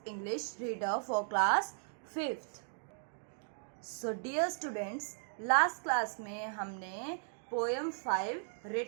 English reader for class 5th. So, dear students, last class में हमने poem 5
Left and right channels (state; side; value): silent; left; digital silence